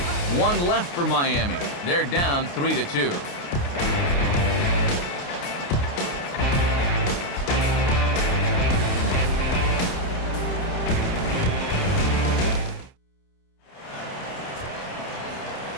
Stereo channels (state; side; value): late; right; 29 ms